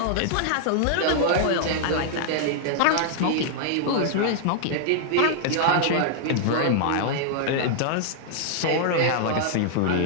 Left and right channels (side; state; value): both; different; correlation -0.01